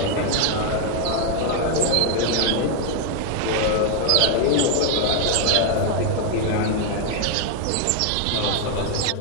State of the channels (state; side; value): different; both; correlation 0.00